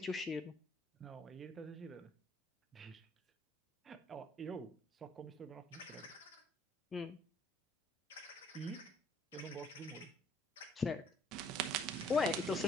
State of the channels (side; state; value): both; normal; correlation 0.61